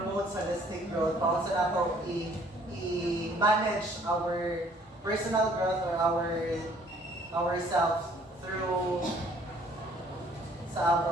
holistic growth, paano sa nato i-manage our personal growth or ourselves through sa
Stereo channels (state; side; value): normal; both; correlation 0.59